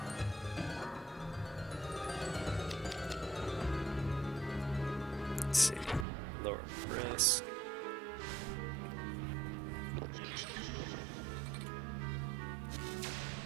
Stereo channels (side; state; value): left; drops out; at 6.1 s